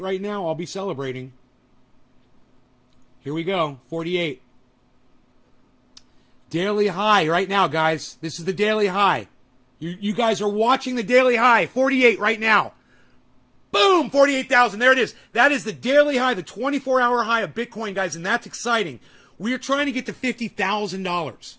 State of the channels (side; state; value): both; identical; correlation 1.00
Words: right now, I'll be celebrating. Here we go, 48. Daily high right now, guys. This is the daily high. You guys are watching the daily high, 48 right now. Boom, 48,000. There it is. That is the daily high, the 24-hour high of Bitcoin, guys, and that's exciting. We are trying to get to $50,000,